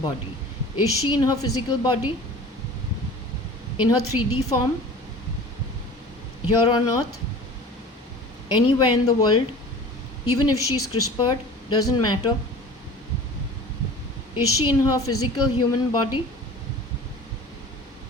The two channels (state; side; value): normal; both; correlation 0.41